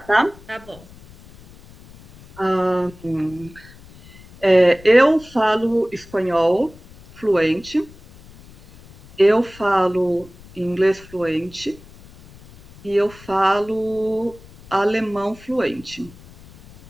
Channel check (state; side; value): noise; left; rumble, 22 dB below the sound